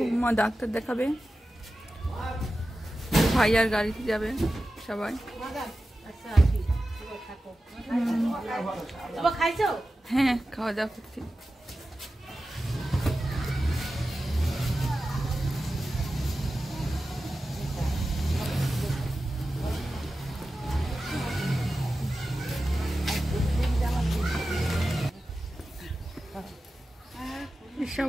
ডাক্তার দেখাবে, ভাই আর গাড়িতে যাবে সবাই। হ্যাঁ, খাওয়া দাওয়া করছি।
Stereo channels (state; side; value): normal; both; correlation 0.93